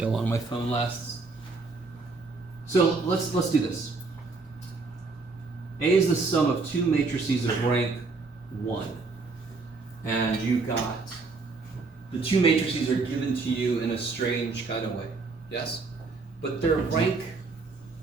how long my phone lasts? So let's do this. A is the sum of two matrices of rank 1. And you got, the two matrices are given to you in a strange kind of way. Yes? But they're rank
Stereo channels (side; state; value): left; quieter; 4.0 dB